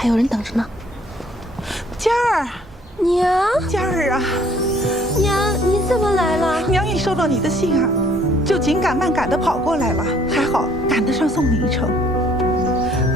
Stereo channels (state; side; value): normal; both; correlation 0.61